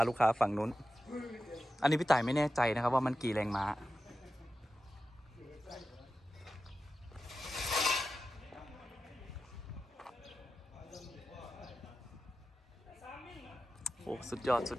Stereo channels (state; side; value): normal; both; correlation 0.92